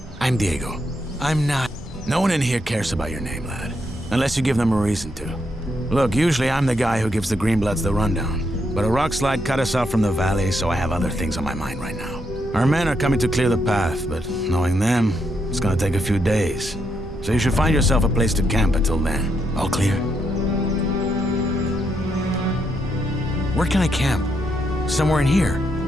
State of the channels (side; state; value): both; normal; correlation 0.79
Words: I'm Diego. I'm not... No one in here cares about your name, lad. Unless you give them a reason to. Look, usually I'm the guy who gives the Greenbloods the rundown. But a rock slide cut us off from the valley, so I have other things on my mind right now. Our men are coming to clear the path, but knowing them, it's gonna take a few days. So you should find yourself a place to camp until then. All clear? Where can I camp? Somewhere in here?